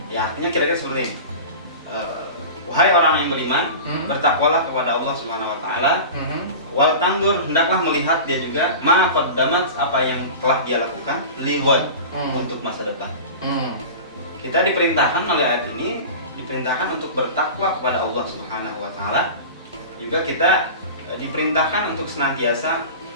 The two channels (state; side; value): inverted; both; correlation -0.33